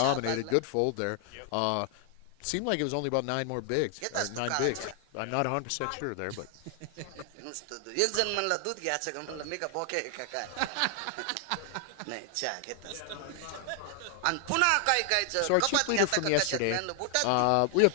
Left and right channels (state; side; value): different; both; correlation 0.00